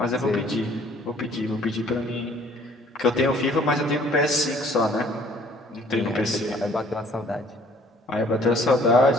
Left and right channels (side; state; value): both; normal; correlation 0.57